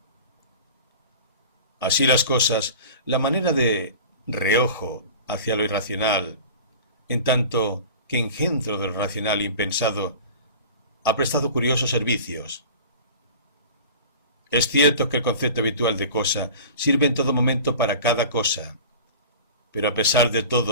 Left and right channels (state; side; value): inverted; both; correlation -0.38